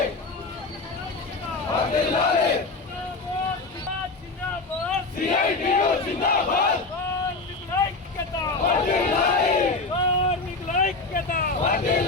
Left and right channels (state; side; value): quieter; right; 3.6 dB